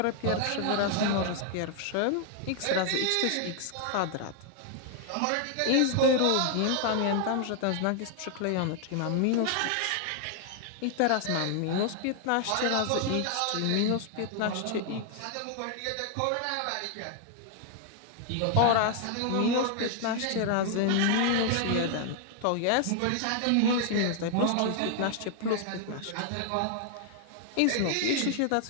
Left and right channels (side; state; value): both; different; correlation 0.00